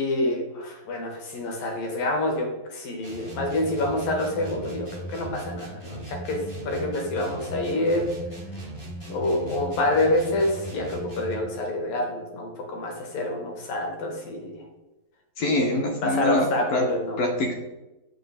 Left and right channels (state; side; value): late; right; 11 ms